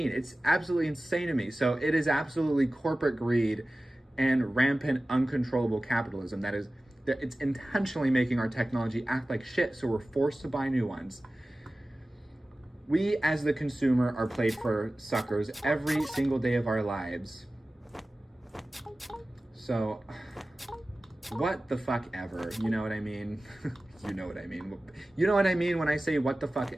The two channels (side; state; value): both; normal; correlation 0.96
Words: It's absolutely insane to me. So it is absolutely corporate greed and rampant, uncontrollable capitalism that it's intentionally making our technology act like shit, so we're forced to buy new ones. We, as the consumer, are played for suckers every single day of our lives. So, what the fuck ever? You know what I mean? You know what I mean. You know what I mean when I say what the fuck